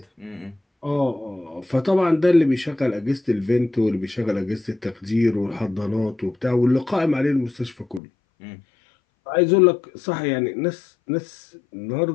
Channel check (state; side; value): drops out; right; at 8.0 s